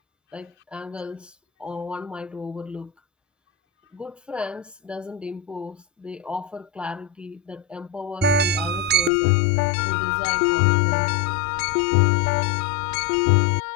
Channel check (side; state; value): right; drops out; at 9.1 s